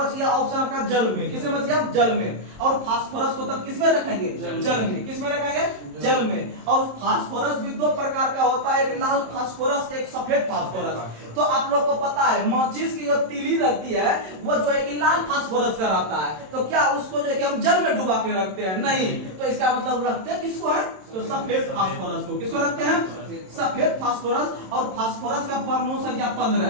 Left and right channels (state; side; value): late; left; 27 ms